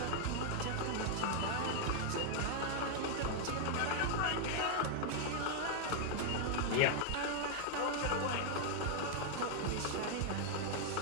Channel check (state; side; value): different; both; correlation 0.00